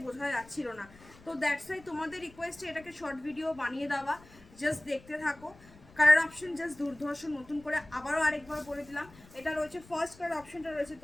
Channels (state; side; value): noise; left; rumble, 23 dB below the sound